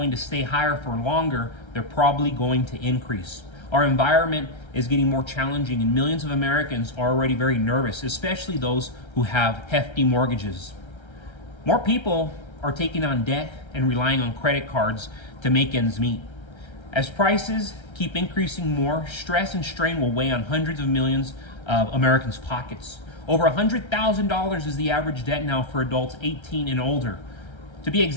to stay higher for longer, they're probably going to increase. Our environment is getting more challenging, and millions of Americans are already very nervous, especially those who have hefty mortgages. More people are taking on debt and relying on credit cards to make ends meet. As prices keep increasing more, stress and strain will weigh on hundreds of millions of Americans' pockets. Over $100,000 is the average debt now for adults 18 and older. To be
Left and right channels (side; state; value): right; late; 1.3 ms